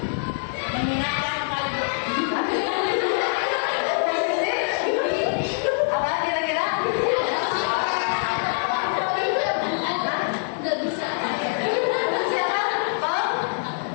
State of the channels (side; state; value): right; silent; 62 dB below the other